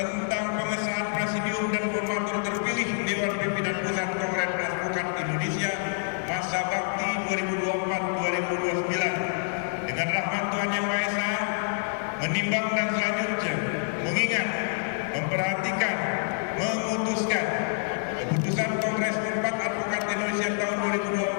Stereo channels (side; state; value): right; silent; digital silence